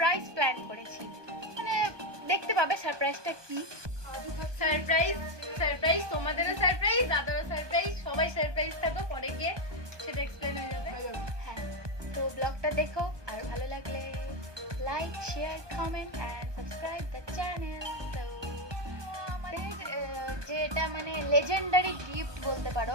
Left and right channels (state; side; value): late; left; 1.2 ms